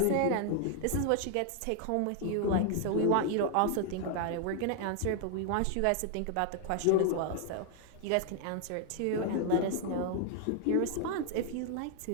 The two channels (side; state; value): both; different; correlation 0.00